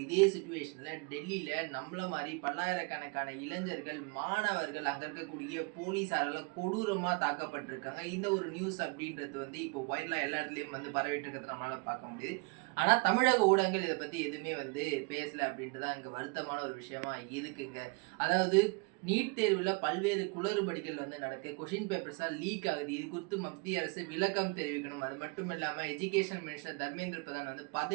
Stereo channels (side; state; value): left; quieter; 31.2 dB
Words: இதே சிச்சுவேஷன்ல டெல்லியில நம்மள மாதிரி பல்லாயிரக்கணக்கான இளைஞர்கள், மாணவர்கள், அங்க இருக்கக்கூடிய போலீஸாரால கொடூரமா தாக்கப்பட்டிருக்காங்க. இந்த ஒரு நியூஸ் அப்படின்றது வந்து இப்போ வைரலா எல்லா இடத்துலயும் வந்து பரவிட்டு இருக்கிறத நம்மளால பார்க்க முடியுது. ஆனா தமிழக ஊடகங்கள் இதை பத்தி எதுவுமே வந்து பேசல அப்படின்ட்டு தான் இங்க வருத்தமான ஒரு விஷயமா இருக்குங்க. அதாவது நீட் தேர்வுல பல்வேறு குளறுபடிகள் வந்து நடக்கு. கொஸ்டின் பேப்பர்ஸா லீக் ஆகுது. இது குறித்து மத்திய அரசு விளக்கம் தெரிவிக்கணும். அது மட்டும் இல்லாம எஜுகேஷன் மினிஸ்டர் தர்மேந்திர பிரதான் வந்து